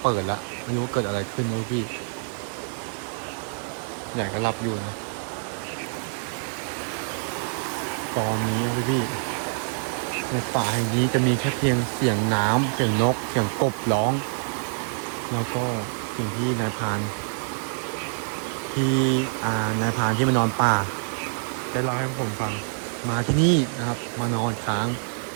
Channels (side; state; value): left; silent; 61 dB below the other